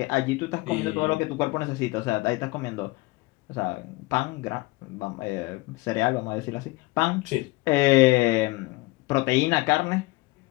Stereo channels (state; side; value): quieter; right; 21.8 dB